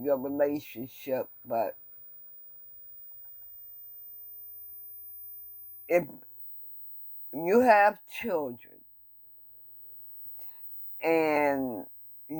your relationship, but if you have children and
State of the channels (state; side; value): identical; both; correlation 1.00